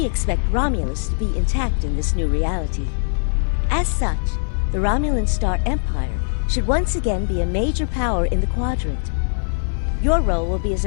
expect Romulus to be intact in this new reality. As such, the Romulan Star Empire should once again be a major power in the quadrant. Your role will be as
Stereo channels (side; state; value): right; silent; 58 dB below the other